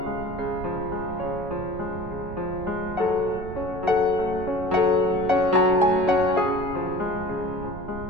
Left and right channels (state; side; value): noise; right; rumble, 11 dB below the sound